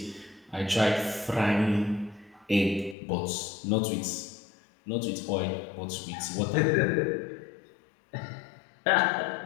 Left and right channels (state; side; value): drops out; right; at 3.0 s